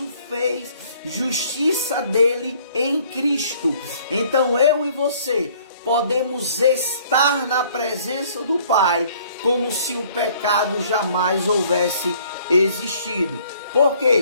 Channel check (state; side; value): inverted; both; correlation -0.58